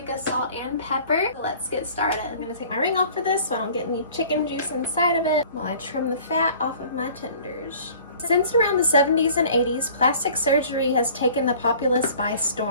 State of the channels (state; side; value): inverted; both; correlation -0.49